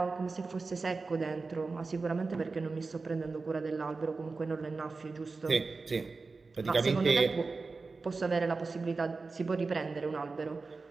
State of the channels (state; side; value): quieter; left; 4.0 dB